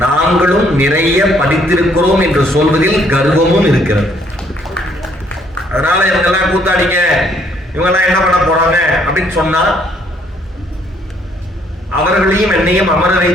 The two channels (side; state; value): both; normal; correlation 0.66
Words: நாங்களும் நிறைய படித்திருக்கிறோம் என்று சொல்வதில் கர்வமும் இருக்கிறது. அதனால இவங்கெல்லாம் கூத்தாடிங்க, இவங்கெல்லாம் என்ன பண்ண போறாங்க அப்படின்னு சொன்னா அவர்களையும் என்னையும் அமர